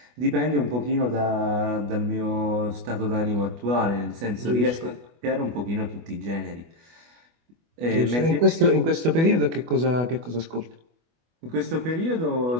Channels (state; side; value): late; left; 25 ms